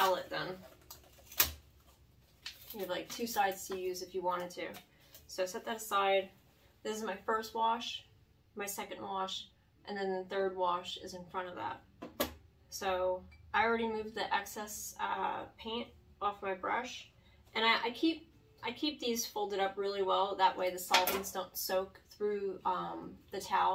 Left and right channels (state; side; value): identical; both; correlation 1.00